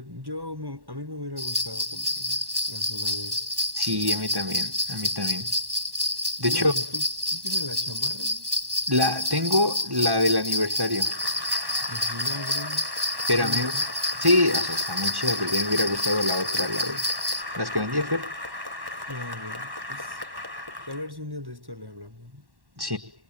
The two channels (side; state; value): left; late; 1.1 ms